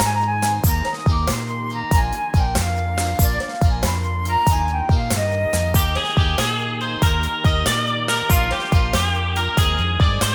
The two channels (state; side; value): identical; both; correlation 1.00